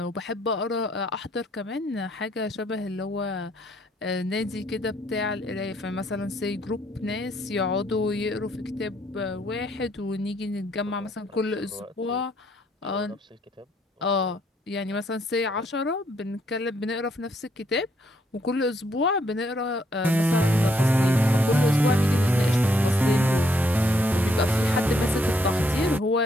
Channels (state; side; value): normal; both; correlation 0.71